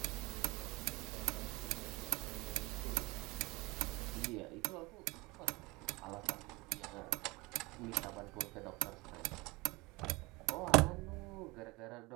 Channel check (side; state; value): left; quieter; 23.7 dB